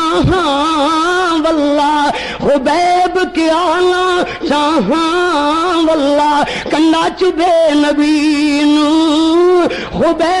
واللہ, خبیب کیا نہ چاہاں واللہ, کنڈا چبے نبی نو.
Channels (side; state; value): both; identical; correlation 1.00